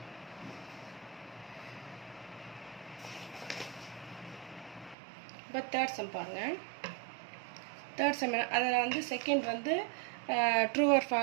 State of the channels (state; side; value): drops out; left; at 5.0 s